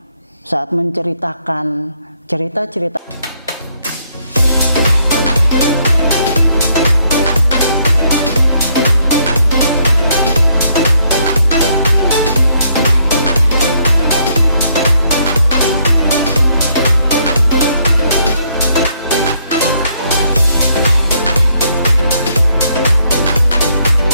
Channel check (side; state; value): both; inverted; correlation -0.71